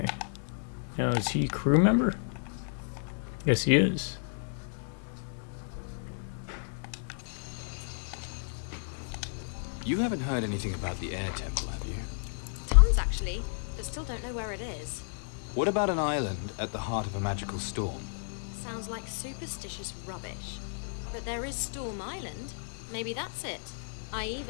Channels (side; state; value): right; silent; digital silence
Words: Now, is he a crew member? Yes, he is. You haven't heard anything about the air temple, have you? Tons, actually, but still don't know where it is. What about an island at the heart of a magical storm? Sounds like superstitious rubbish. But there is Storm Island. Maybe that's it. I